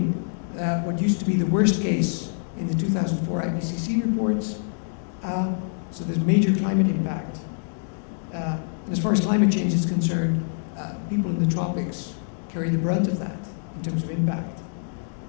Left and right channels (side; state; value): right; silent; digital silence